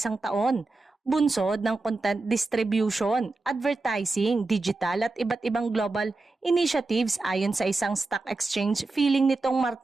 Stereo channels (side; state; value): left; quieter; 3.4 dB